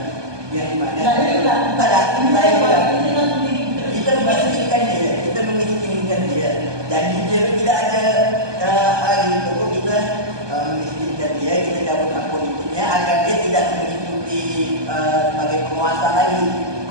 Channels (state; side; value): late; left; 1.2 ms